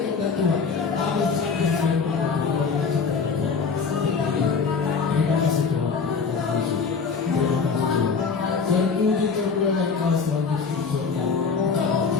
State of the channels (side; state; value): right; quieter; 5.3 dB